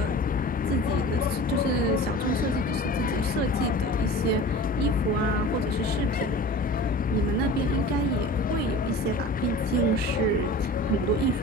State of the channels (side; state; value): both; normal; correlation 0.39